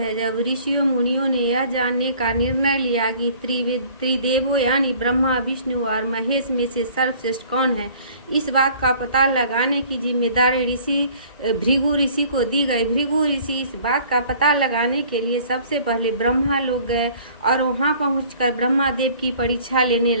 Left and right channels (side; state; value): both; inverted; correlation -0.53